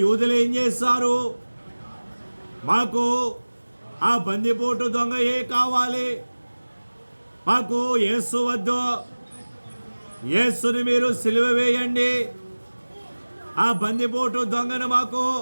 యూదులు ఏం చేస్తారు? మాకు ఆ బందిపోటు దొంగయే కావాలి, మాకు యేసు వద్దు, యేసుని మీరు సిలువ వేయండి, ఆ బందిపోటు దొంగను మాకు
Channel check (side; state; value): both; inverted; correlation -1.00